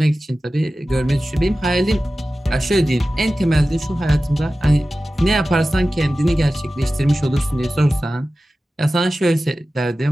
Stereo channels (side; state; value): both; normal; correlation 0.95